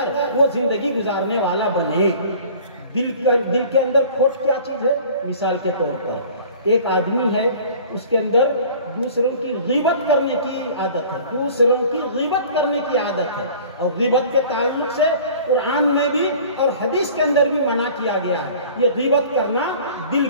وہ زندگی گزارنے والا بنے۔ دل کے اندر کھوٹ کیا چیز ہے؟ مثال کے طور پر ایک آدمی ہے، اس کے اندر دوسروں کی غیبت کرنے کی عادت ہے، دوسروں کی غیبت کرنے کی عادت ہے، اور غیبت کے تعلق سے قرآن میں بھی اور حدیث کے اندر بھی منع کیا گیا ہے۔ یہ غیبت کرنا دل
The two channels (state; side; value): inverted; both; correlation -0.46